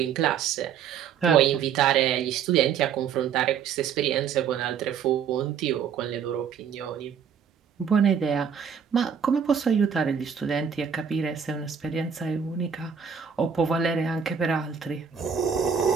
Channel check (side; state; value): left; quieter; 7.3 dB